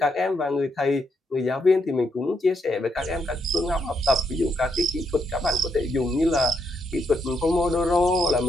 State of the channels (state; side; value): normal; both; correlation 0.78